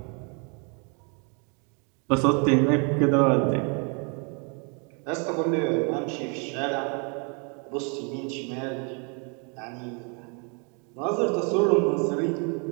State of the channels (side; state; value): left; quieter; 36.3 dB